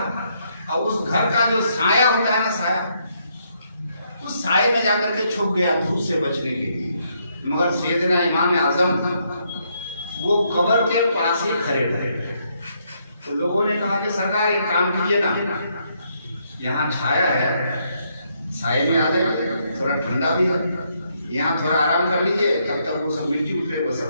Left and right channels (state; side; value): inverted; both; correlation -0.74